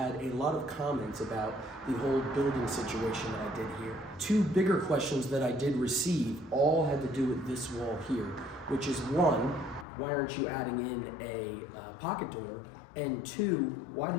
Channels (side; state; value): right; drops out; at 9.9 s